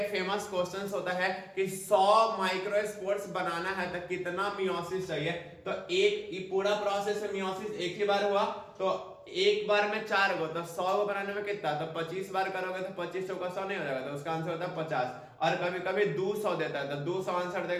फेमस क्वेश्चन होता है कि 100 माइक्रोस्पोर्स बनाना है तो कितना मियोसिस चाहिए। तो एक पूरा प्रोसेस में मियोसिस एक ही बार हुआ, तो एक बार में 4 को, तो 100 को बनाने में कितना, तो 25 बार करोगे तो 25 चौका 100 नहीं हो जाएगा, तो उसका आंसर होता है 50। और कभी कभी 200 देता है तो 200 आंसर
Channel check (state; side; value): identical; both; correlation 1.00